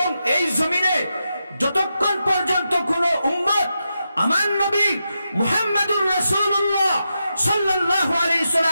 এই জমিনে যতক্ষণ পর্যন্ত কোন উম্মত আমার নবী মুহাম্মদুর রাসূলুল্লাহ সাল্লাল্লাহু আলাইহি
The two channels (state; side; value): inverted; both; correlation -0.87